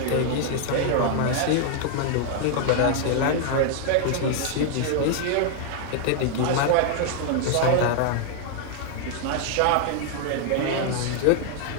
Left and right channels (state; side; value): different; both; correlation 0.00